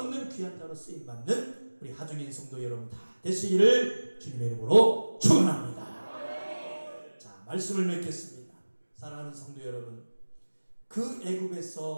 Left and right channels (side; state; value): both; inverted; correlation -1.00